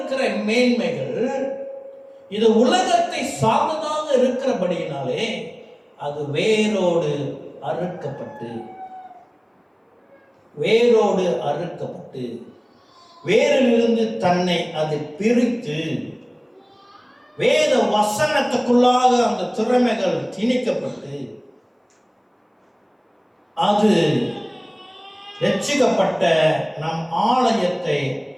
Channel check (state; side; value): identical; both; correlation 1.00